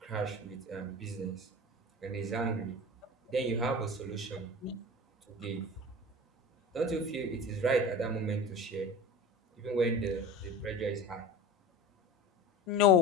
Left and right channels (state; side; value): normal; both; correlation 0.34